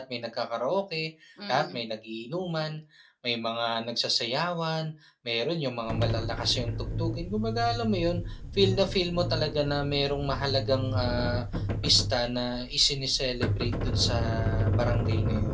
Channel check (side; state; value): both; identical; correlation 1.00